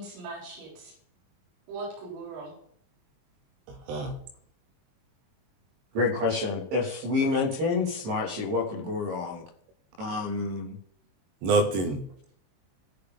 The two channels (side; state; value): left; late; 21 ms